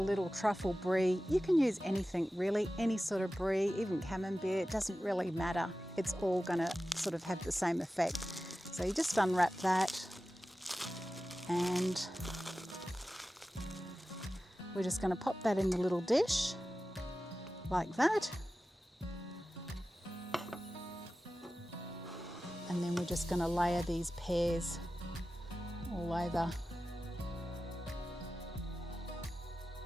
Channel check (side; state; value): both; normal; correlation 0.95